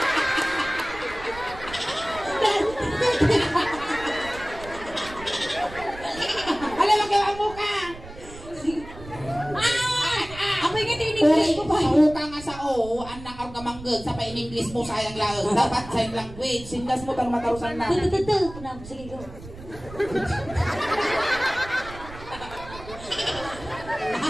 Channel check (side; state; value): right; noise; rumble, 15 dB below the sound